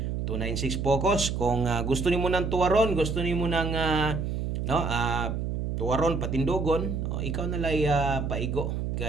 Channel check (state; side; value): noise; right; hum, 2 dB below the sound